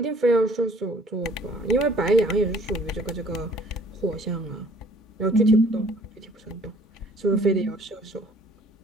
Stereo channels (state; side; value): normal; both; correlation 0.56